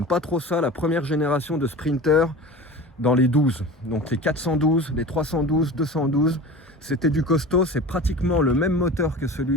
pas trop ça, la première génération de Sprinter dans les 12. Donc les 412, les 312, 212, c'était du costaud. C'est pratiquement le même moteur que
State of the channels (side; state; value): both; normal; correlation 0.35